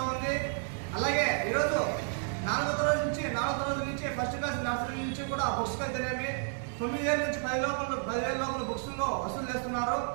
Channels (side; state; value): left; silent; 57 dB below the other